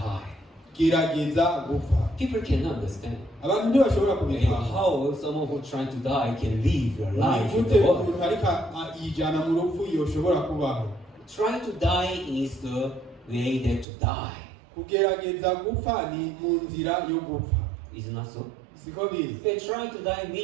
Gerageza gupfa. People cannot understand. Abantu ntibashobora kubitahura. How someone who trying to die can live your life in Nigute the world. umuntu ariko yijana mu rupfu yoshobora kubaho? Trying to die is the way there to die. Kugerageza gupfa ni mu nzira yo gupfa. Is it not so? Siko biri? Trying to die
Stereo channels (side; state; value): left; drops out; at 13.9 s